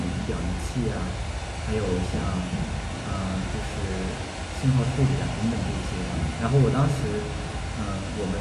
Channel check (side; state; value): both; identical; correlation 1.00